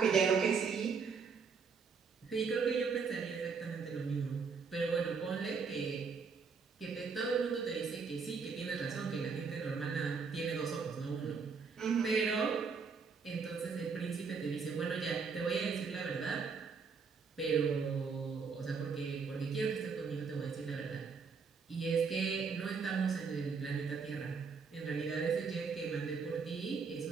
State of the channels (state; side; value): quieter; left; 5.4 dB